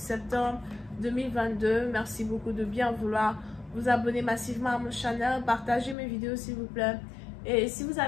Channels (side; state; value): right; drops out; at 6.0 s